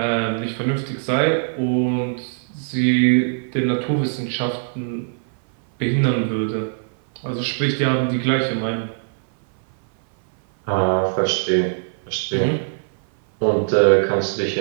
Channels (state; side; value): silent; left; 59 dB below the other